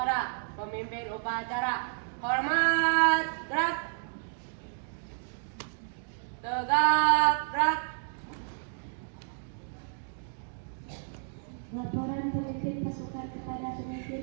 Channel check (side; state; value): left; silent; digital silence